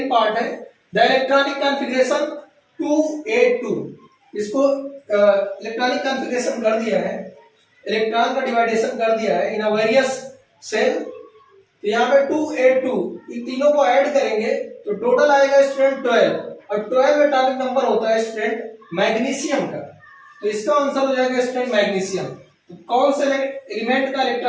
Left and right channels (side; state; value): both; identical; correlation 1.00